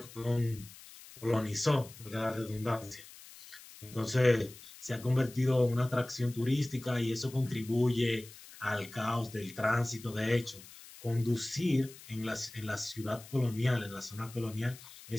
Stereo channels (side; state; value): left; noise; hiss, 18 dB below the sound